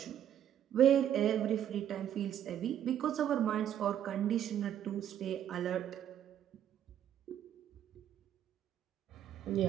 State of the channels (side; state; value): left; quieter; 10.3 dB